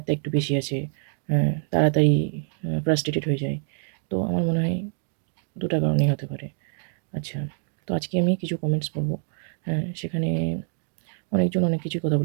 একটু বেশি আছে, তাড়াতাড়ি ফ্রাস্ট্রেটেড হয়ে যায়। তো আমার মনে হয় ২ টা কারণেই হতে পারে। আচ্ছা, তো আজকে আমি কিছু কমেন্টস পড়ব। সেখানে অনেকজন অনেক কিছুই কথা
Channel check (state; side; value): silent; left; 61 dB below the other